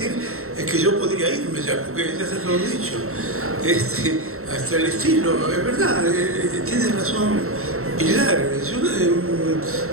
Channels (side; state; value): left; late; 0.63 ms